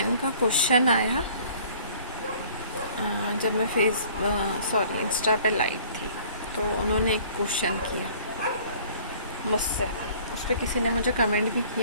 का क्वेश्चन आया जब मैं इंस्टा पे लाइव थी, तो उन्होंने एक क्वेश्चन किया मुझसे। उस पर किसी ने मुझे कमेंट भी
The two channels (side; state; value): both; inverted; correlation -0.53